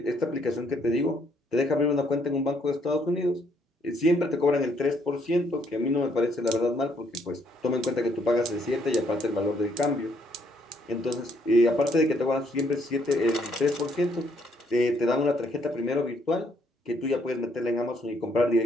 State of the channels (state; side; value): normal; both; correlation 0.69